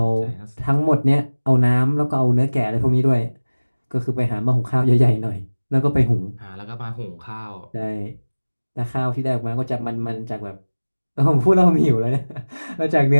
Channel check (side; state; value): both; inverted; correlation -1.00